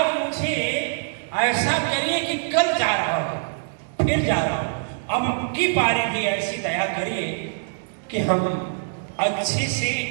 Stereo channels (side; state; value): left; silent; digital silence